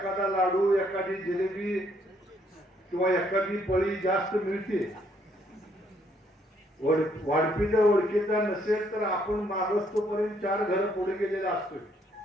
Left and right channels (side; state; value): both; normal; correlation 0.69